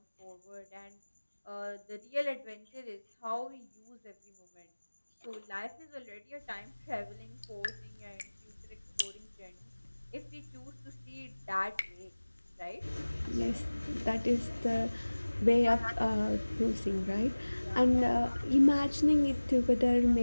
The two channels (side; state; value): both; inverted; correlation -1.00